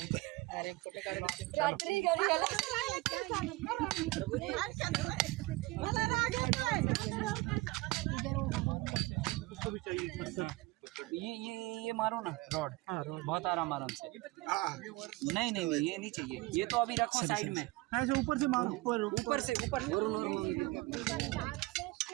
रात्री घरी मला राग ये मारो ना रॉड. बहुत आराम से. नहीं नहीं नहीं ये नहीं चाहिए. ये तो अभी रखो साइड में. ऐसे ऊपर से मारो. ऊपर से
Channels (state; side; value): quieter; left; 21.3 dB